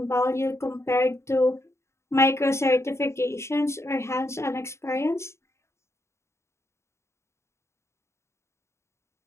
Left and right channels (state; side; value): late; right; 0.13 ms